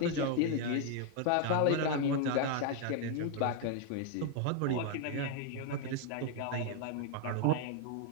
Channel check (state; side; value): different; both; correlation 0.01